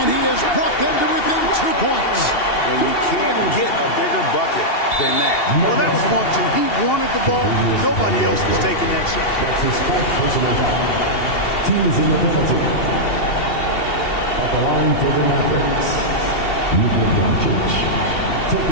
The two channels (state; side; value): late; right; 2.7 ms